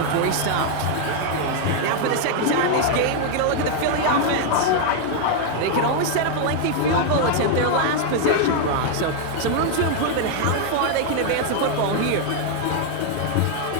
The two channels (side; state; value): both; different; correlation 0.00